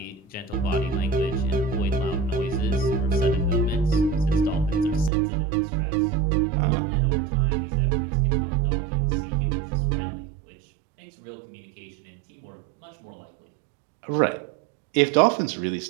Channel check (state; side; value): drops out; left; at 5.1 s